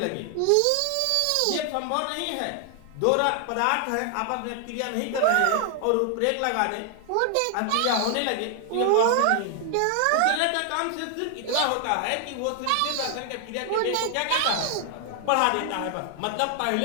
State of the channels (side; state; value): both; different; correlation 0.00